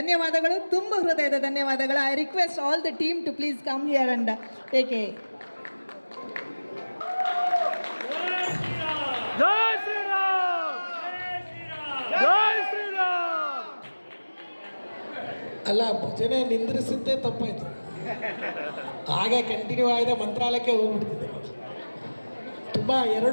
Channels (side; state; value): both; inverted; correlation -1.00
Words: ತುಂಬ ಹೃದಯದ ಧನ್ಯವಾದಗಳು. I request all the team to please come here and take a ಅಲ್ಲ, ಭಜನೆ ನಿಂದ್ರಿಸಿದ್ದೇ ತಪ್ಪಾಯಿತು. ಹಾಗೆ ಕಂಟಿನ್ಯೂ ಆಗಿದೆ, ಮಂತ್ರಾಲಯಕ್ಕೆ ಹೋಗ್ಬಿಡ್ತಿದ್ದೆ. ತುಂಬ